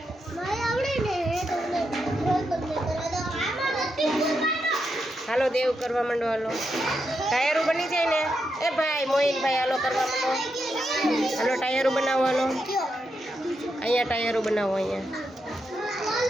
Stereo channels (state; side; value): normal; both; correlation 0.84